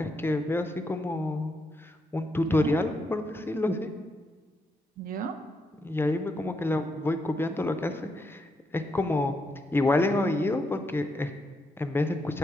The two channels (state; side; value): normal; both; correlation 0.80